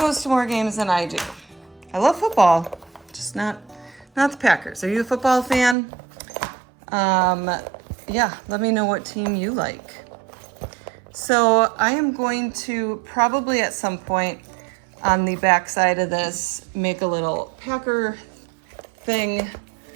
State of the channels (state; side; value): drops out; left; at 5.8 s